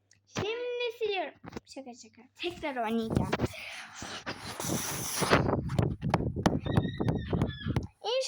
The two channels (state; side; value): identical; both; correlation 1.00